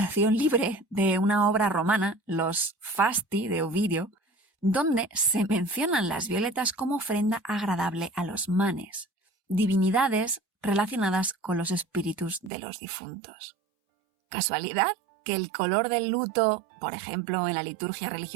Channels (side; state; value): left; drops out; at 12.5 s